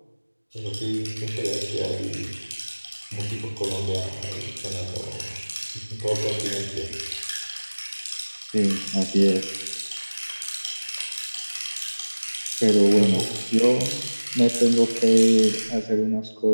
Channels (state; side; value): inverted; both; correlation -1.00